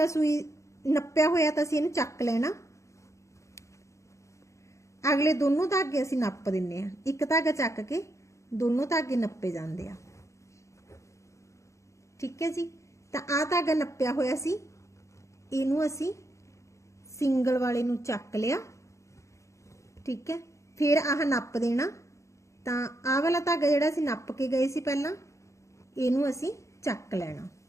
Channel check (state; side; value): late; right; 0.15 ms